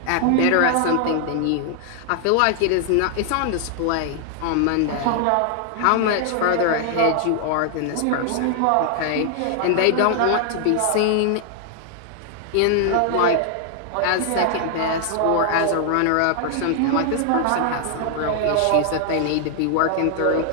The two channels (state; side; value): different; both; correlation 0.00